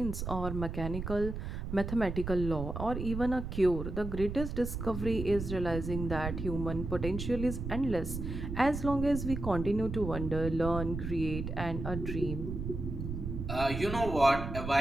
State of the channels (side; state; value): right; noise; rumble, 5 dB below the sound